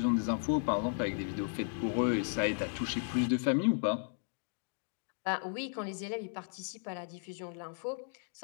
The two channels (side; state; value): right; silent; digital silence